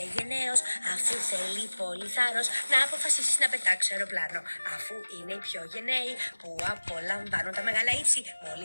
γενναίος. Αφού θέλει πολύ θάρρος να αποφασίσεις να πετάξεις αεροπλάνο. Αφού είναι οι πιο γενναίοι που απολαμβάνουν τα μεγάλα ύψη.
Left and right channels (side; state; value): both; inverted; correlation -1.00